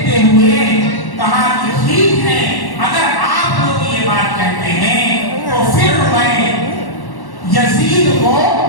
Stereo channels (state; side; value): late; right; 1.1 ms